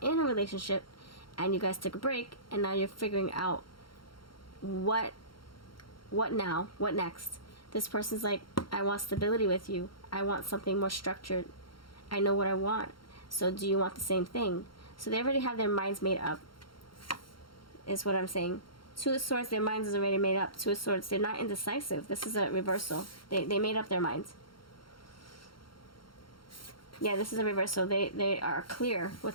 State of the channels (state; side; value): late; right; 0.73 ms